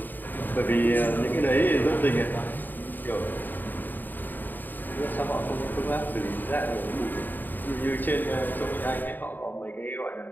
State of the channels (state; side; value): late; right; 0.090 ms